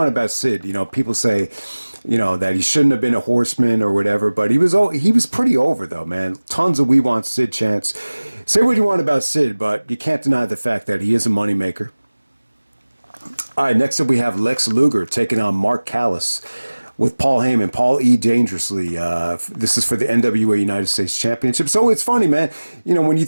about Sid. People say that he shouldn't have been a Horseman or whatever. But he was pretty over though, man. Tons of "We Want Sid" chants. Say what you want about Sid, but you can't deny the fact that he is a moneymaker. All right, next up we have Lex Luger taking on Mark Callas with Paul Heyman. Paul E. Dangerously. This is for the NWA United States Championship. So it's funny, man. When you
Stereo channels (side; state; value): both; inverted; correlation -1.00